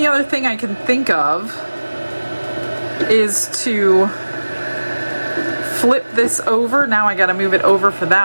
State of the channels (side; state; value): both; inverted; correlation -1.00